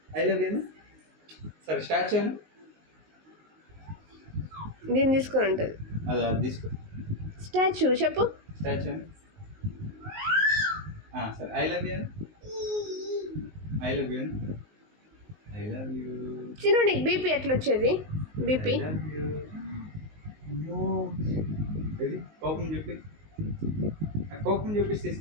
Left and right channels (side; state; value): left; late; 19 ms